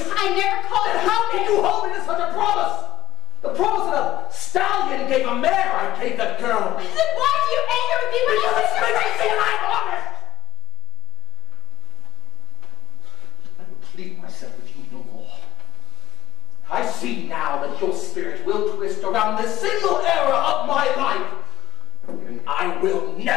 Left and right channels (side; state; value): right; quieter; 14.6 dB